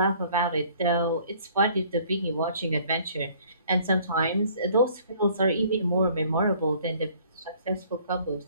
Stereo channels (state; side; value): inverted; both; correlation -0.56